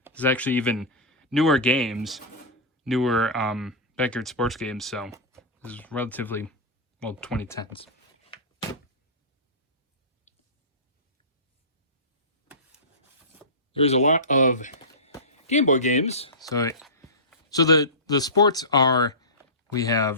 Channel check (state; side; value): normal; both; correlation -0.20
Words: There's actually even newer games. Newer backyard sports games, so this is relatively, well, 2010s. There's a lot of Game Boy games. So the sports are, we